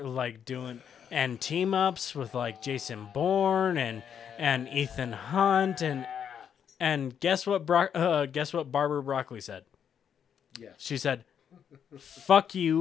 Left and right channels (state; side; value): quieter; right; 8.2 dB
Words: and team ups with like Jason Bourne and Ethan Hunt and guess what Barbara Broccoli said? Yes. She said, "Fuck